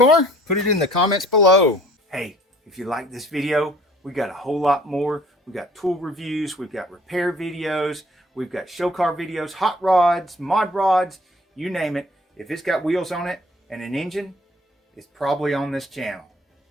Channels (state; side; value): normal; both; correlation 0.55